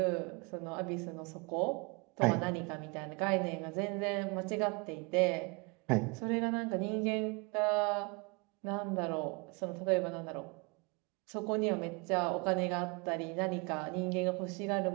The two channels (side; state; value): left; quieter; 29.9 dB